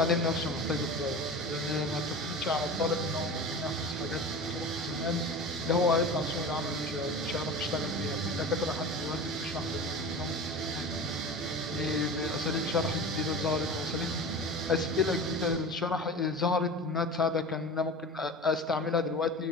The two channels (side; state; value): both; normal; correlation 0.33